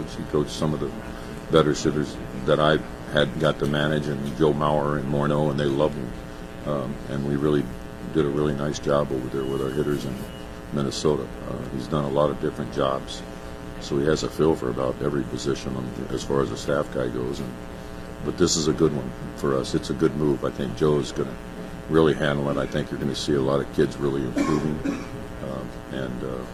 He coached some of the better hitters that I had got to manage, and Joe Mauer and Morneau, and they loved him. And we really did a really nice job over there with our hitters in Minnesota. He's done a lot of different jobs, so he has a feel for about every position as far as a staff guy goes. But this is a good one for us. It's a good move. I think Joe is going to really handle it. I think you're going to see a lot of kids really improving, and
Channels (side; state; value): both; identical; correlation 1.00